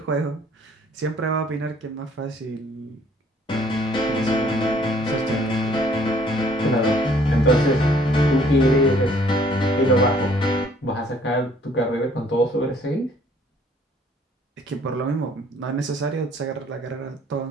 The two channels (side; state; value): both; normal; correlation 0.60